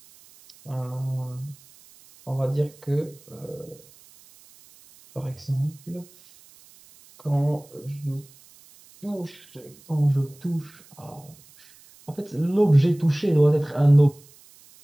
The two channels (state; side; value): noise; right; hiss, 25 dB below the sound